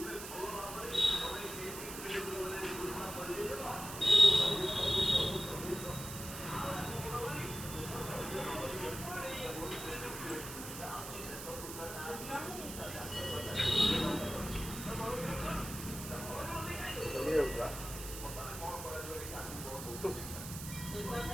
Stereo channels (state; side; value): noise; right; hiss, 9 dB below the sound